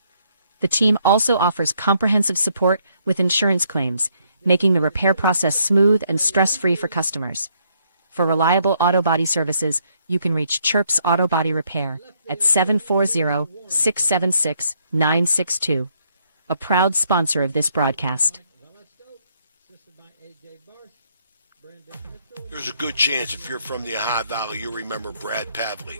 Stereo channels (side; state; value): both; inverted; correlation -0.71